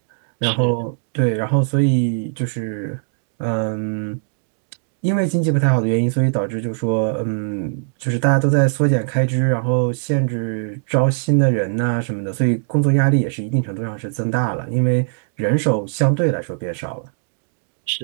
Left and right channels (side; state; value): left; silent; digital silence